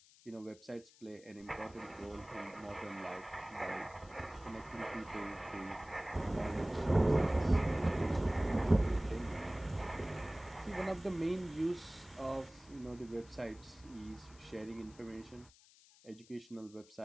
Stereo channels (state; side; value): noise; left; hiss, 25 dB below the sound